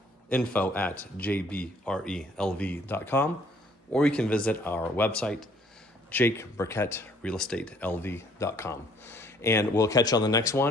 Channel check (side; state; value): both; normal; correlation 0.61